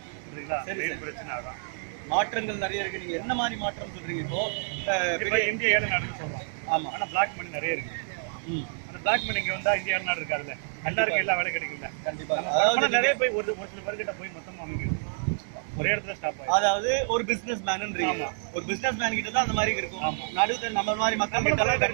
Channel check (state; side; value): silent; left; digital silence